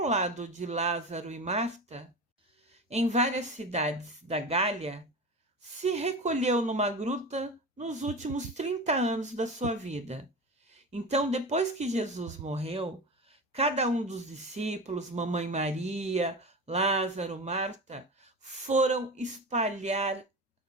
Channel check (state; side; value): normal; both; correlation 0.27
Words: lado de Lázaro e Marta, em várias cidades da Gália, se recolheu numa gruta nos últimos 30 anos da sua vida. Então, depois que Jesus morreu, cada um dos discípulos, Mamãe Maria, Lázaro, Marta, foram espalhar